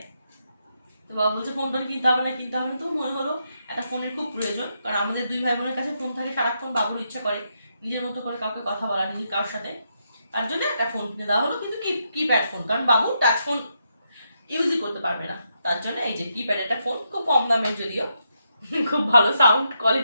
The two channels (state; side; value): inverted; both; correlation -0.81